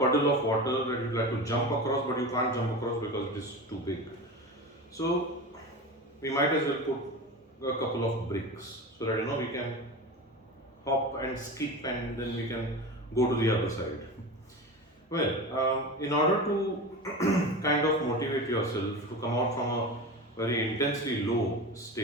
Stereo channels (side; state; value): both; normal; correlation 0.28